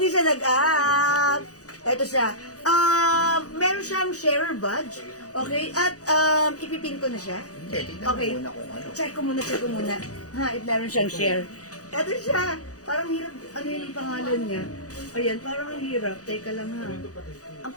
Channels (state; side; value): late; right; 0.67 ms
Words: siya nag-up. Ito siya. Meron siyang sharer badge. Okay? At ipipin ko na siya. Hindi, tignan Okay. mo muna kung ano. Check ko muna. Ha, meron siyang share. Ito siya. Parang hirap. Ano yung pangalan niya? Ayan, parang ang hirap. Teka lang ha. Ang